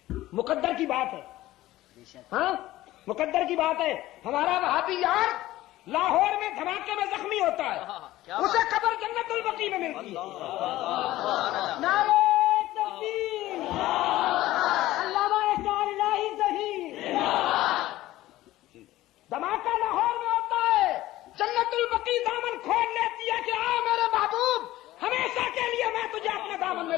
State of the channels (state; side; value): quieter; right; 16.0 dB